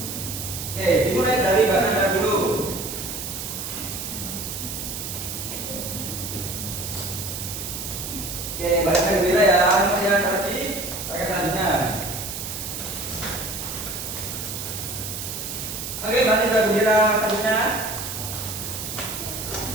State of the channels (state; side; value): noise; right; hiss, 6 dB below the sound